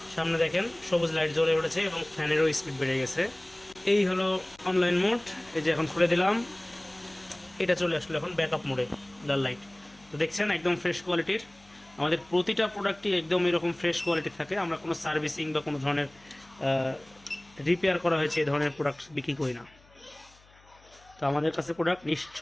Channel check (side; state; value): left; noise; hum, 28 dB below the sound